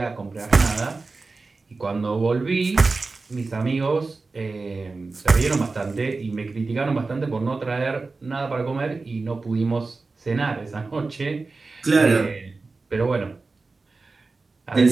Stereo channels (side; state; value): left; quieter; 3.8 dB